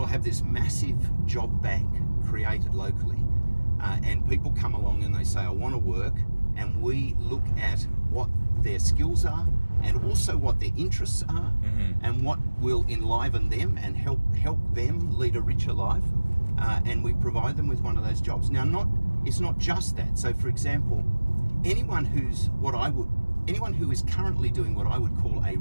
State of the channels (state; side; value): inverted; both; correlation -1.00